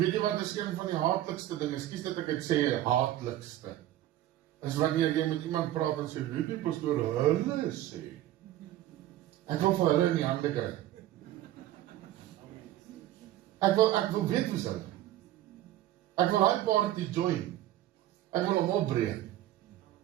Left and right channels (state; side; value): quieter; left; 13.8 dB